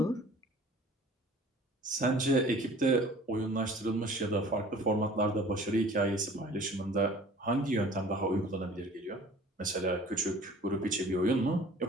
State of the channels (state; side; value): normal; both; correlation 0.48